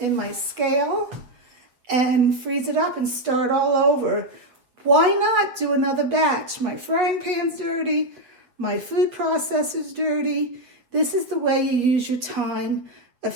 my scale and freeze it up and start all over. Why not do another batch? My frying pan's dirty. My food processor's dirty. This is the way you use your time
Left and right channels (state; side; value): late; left; 8.2 ms